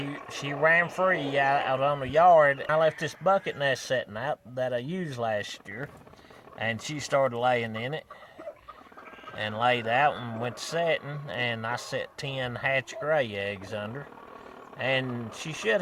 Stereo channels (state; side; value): identical; both; correlation 1.00